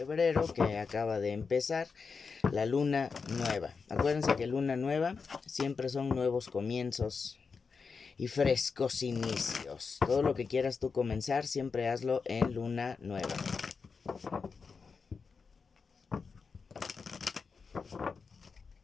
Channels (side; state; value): right; quieter; 5.1 dB